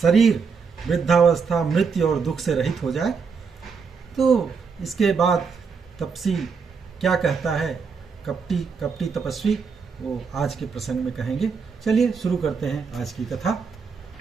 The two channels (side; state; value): left; quieter; 5.5 dB